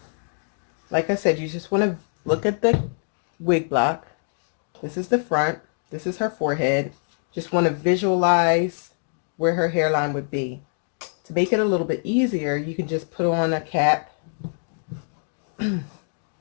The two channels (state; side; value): silent; right; 60 dB below the other